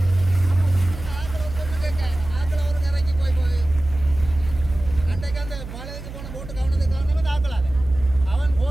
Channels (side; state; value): right; noise; hum, 12 dB below the sound